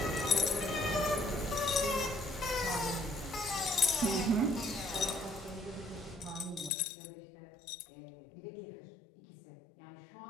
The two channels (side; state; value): right; drops out; at 6.7 s